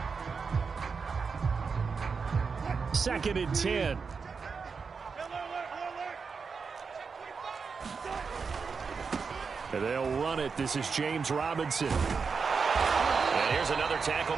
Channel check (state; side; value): quieter; left; 5.3 dB